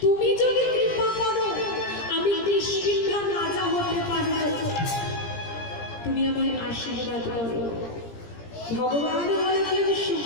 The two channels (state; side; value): late; right; 17 ms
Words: তুমি যদি কৃপা করো, আমি কিষ্কিন্ধার রাজা হতে পারবো, তুমি আমায় আশীর্বাদ করো। ভগবান বলেছেন,